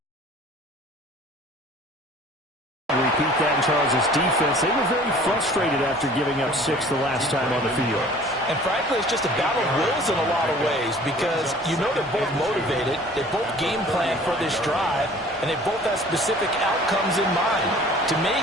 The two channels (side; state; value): both; normal; correlation 0.49